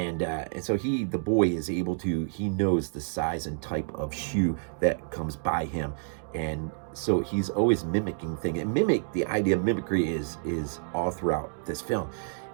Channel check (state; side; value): silent; left; digital silence